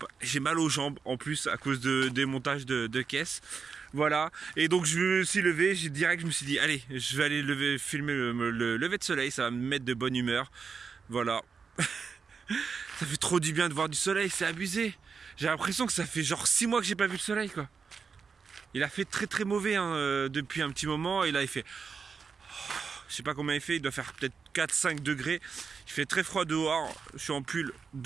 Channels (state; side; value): quieter; left; 5.6 dB